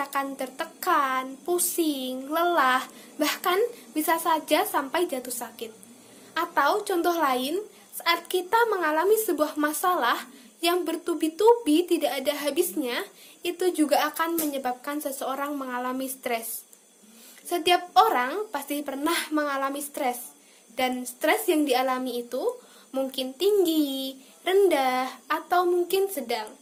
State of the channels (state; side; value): identical; both; correlation 1.00